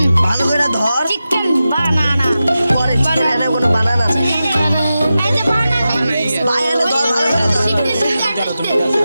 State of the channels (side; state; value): both; inverted; correlation -0.92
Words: ভালো করে ধর। চিকেন বানানা পরে চিকেন এনে কোনো বানানা নেই। ভাই এনে ধর ভালো করে ধর।